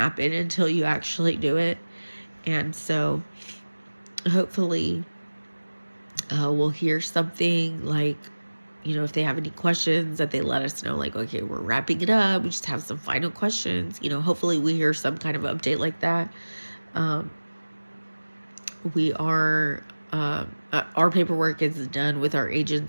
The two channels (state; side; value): inverted; both; correlation -1.00